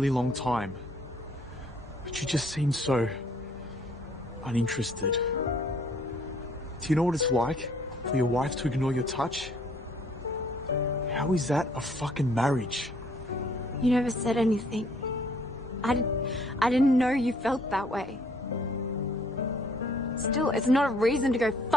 long time. But you just seemed so uninterested. Do you know what it's like for your wife to ignore your touch? How is that a fucking marriage? You never said anything. I didn't know you felt that way. Still, it's not a reason to go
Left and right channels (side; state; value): both; normal; correlation 0.62